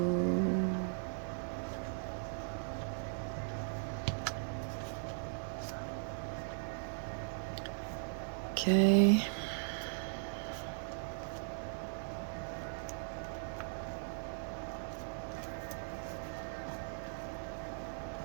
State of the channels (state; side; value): silent; left; 52 dB below the other